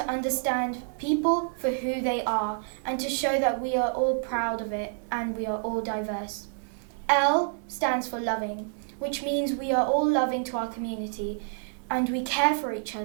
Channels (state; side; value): silent; left; 59 dB below the other